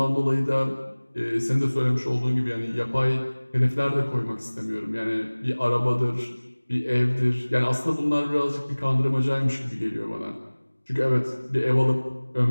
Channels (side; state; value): both; inverted; correlation -1.00